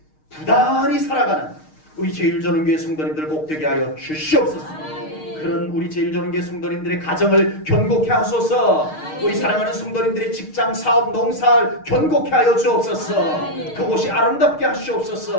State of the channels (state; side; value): late; right; 6.5 ms